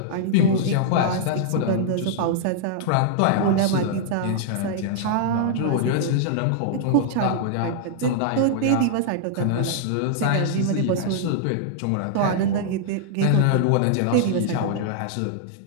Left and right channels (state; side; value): different; both; correlation -0.01